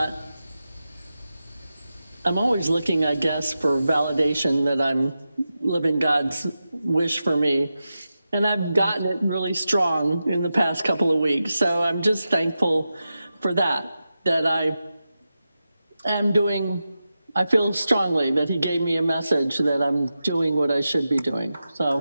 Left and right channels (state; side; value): inverted; both; correlation -0.91